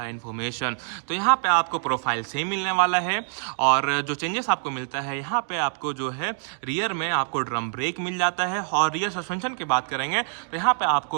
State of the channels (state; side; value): silent; left; digital silence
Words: इन्फॉर्मेशन। तो यहाँ पे आपको प्रोफाइल सेम मिलने वाला है और जो चेंजेस आपको मिलता है यहाँ पे आपको जो है रियर में आपको ड्रम ब्रेक मिल जाता है। और रियर सस्पेंशन की बात करेंगे तो यहाँ पे